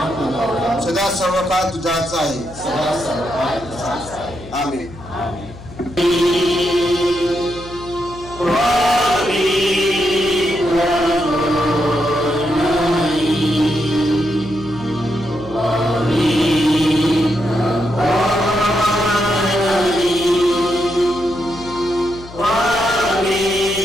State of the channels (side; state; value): left; noise; hum, 17 dB below the sound